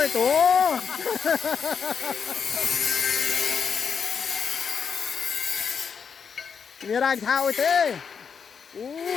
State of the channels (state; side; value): quieter; right; 6.5 dB